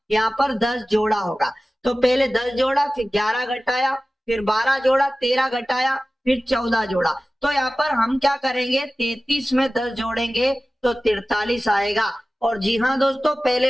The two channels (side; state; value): both; normal; correlation 0.96